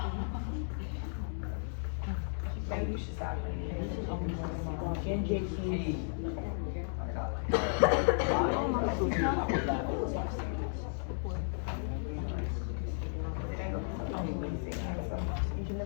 Maybe you should stop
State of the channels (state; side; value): silent; right; digital silence